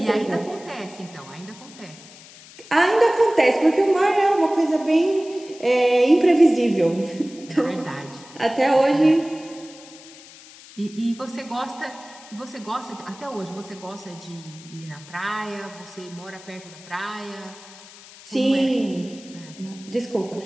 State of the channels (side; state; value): left; noise; hiss, 20 dB below the sound